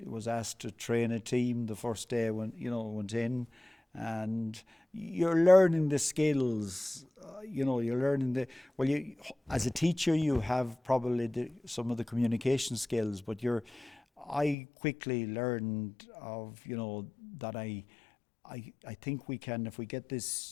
was asked to train a team the first day I went in, and you're learning the skills. You're learning as a teacher, you have probably some of the communication skills, but I quickly learned of, that I think we can, if we get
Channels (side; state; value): right; drops out; at 14.6 s